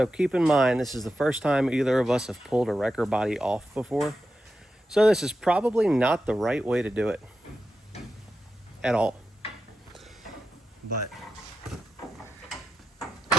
keep in mind, this is the first time either of us have pulled a wrecker body off before. So this is probably not the right way to do it at all. But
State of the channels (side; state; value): both; normal; correlation 0.90